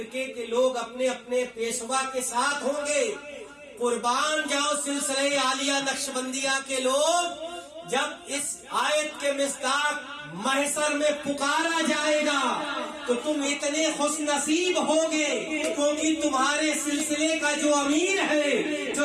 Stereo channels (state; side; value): identical; both; correlation 1.00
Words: کے لوگ اپنے اپنے پیشوا کے ساتھ ہوں گے۔ قربان جاؤ سلسلہ عالیہ نقشبندیہ کے لوگ، جب اس آیت کے مصداق محشر میں پکارا جائے گا تو تم اتنے خوش نصیب ہوگے، کیونکہ تمہارے سلسلے کا جو امیر ہے، جو